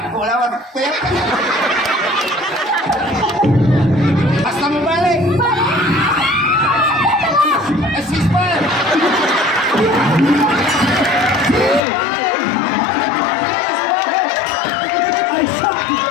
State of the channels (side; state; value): right; drops out; at 11.8 s